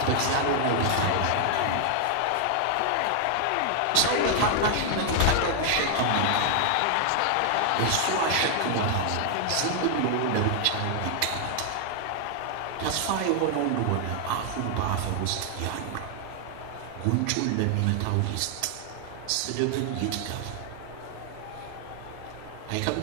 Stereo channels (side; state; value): both; different; correlation 0.00